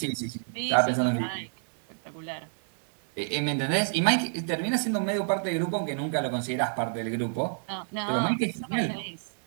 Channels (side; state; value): left; silent; digital silence